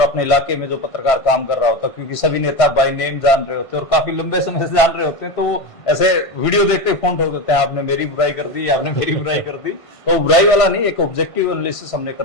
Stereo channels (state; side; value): late; right; 1.5 ms